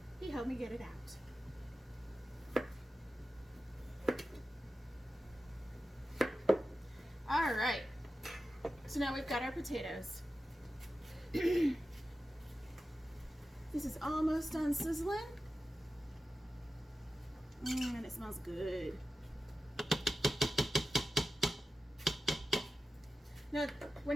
He helped me get it out. All right, so now we've got our potatoes. This is almost done sizzling. And it smells good. Now,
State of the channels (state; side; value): normal; both; correlation 0.92